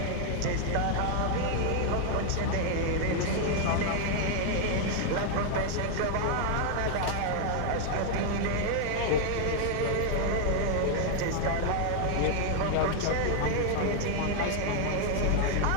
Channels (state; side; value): different; both; correlation 0.00